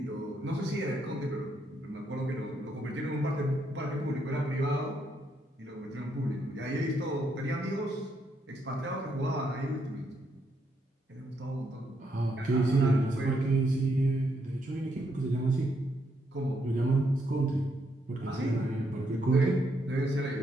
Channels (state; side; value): normal; both; correlation 0.76